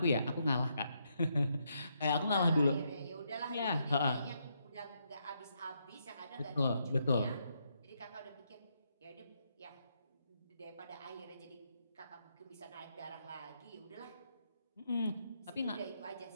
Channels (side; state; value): both; inverted; correlation -0.78